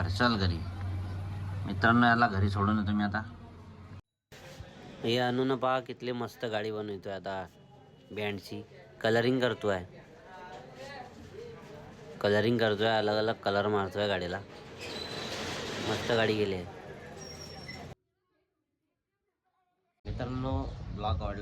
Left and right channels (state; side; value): identical; both; correlation 1.00